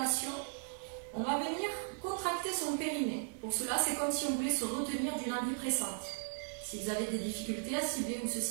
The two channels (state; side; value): silent; left; 53 dB below the other